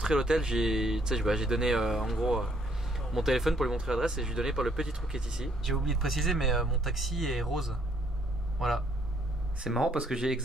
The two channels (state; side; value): normal; both; correlation 0.67